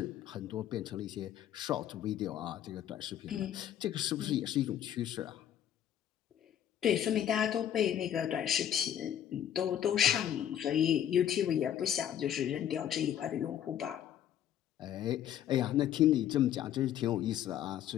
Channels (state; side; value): quieter; right; 10.4 dB